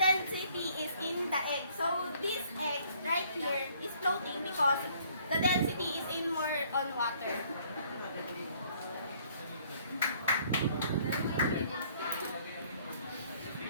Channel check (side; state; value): both; inverted; correlation -0.61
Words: is in the egg. So this egg right here is floating because the density is in more on water.